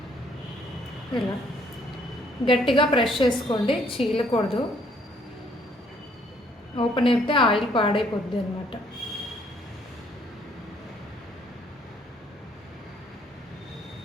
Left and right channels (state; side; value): normal; both; correlation 0.65